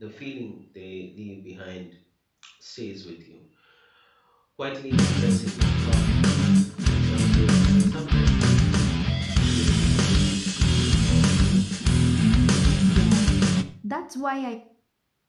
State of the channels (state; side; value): identical; both; correlation 1.00